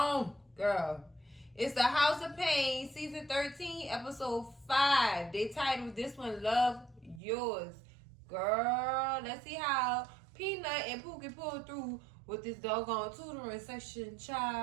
girl. It's the House of Payne, season 13, episode 5. They titled this one, Love Yours. Girl, let's see how Peanut and Pookie pull through with this doggone tutoring session,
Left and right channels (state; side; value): drops out; left; at 7.2 s